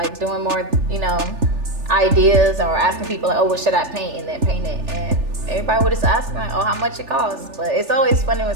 doing more, you know, ideas, or asking people like, oh, what should I paint? And then paint it. And everybody would just ask me like, oh, how much it costs? But it's always funny when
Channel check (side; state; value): left; late; 3.4 ms